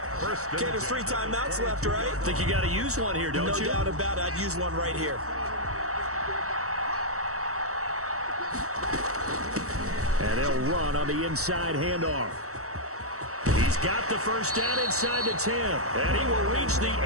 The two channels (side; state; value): left; late; 0.65 ms